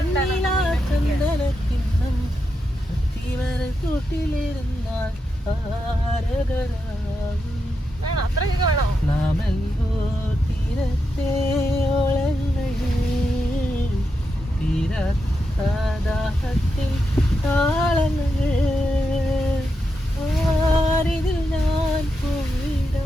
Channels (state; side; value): normal; both; correlation 0.86